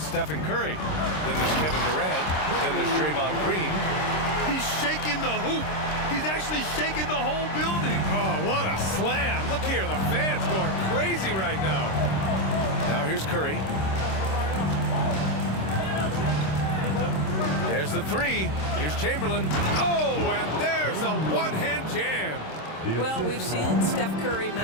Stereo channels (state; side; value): late; right; 26 ms